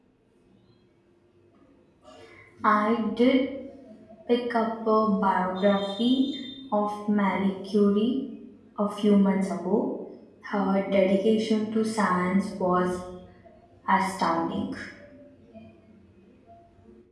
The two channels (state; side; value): identical; both; correlation 1.00